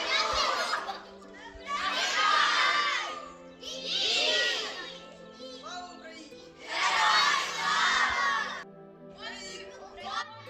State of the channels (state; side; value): identical; both; correlation 1.00